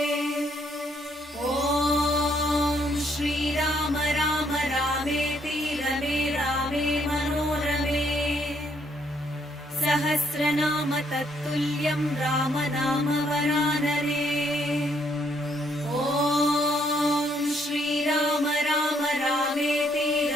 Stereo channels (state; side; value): normal; both; correlation 0.70